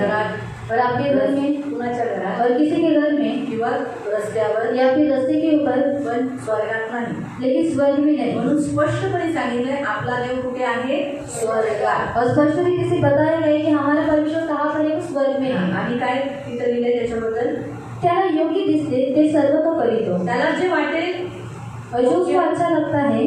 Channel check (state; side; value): identical; both; correlation 1.00